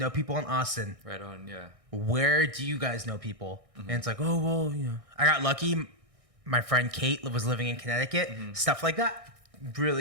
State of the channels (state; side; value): late; left; 1.6 ms